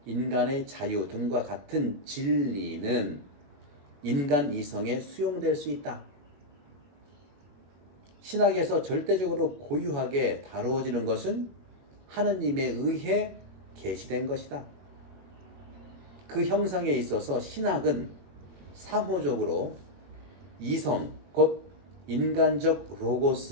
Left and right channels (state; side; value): late; left; 21 ms